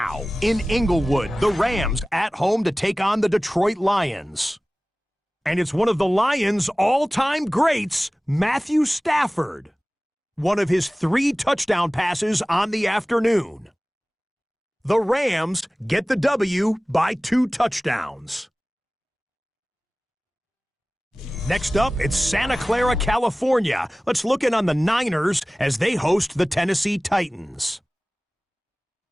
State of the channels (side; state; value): both; normal; correlation 0.98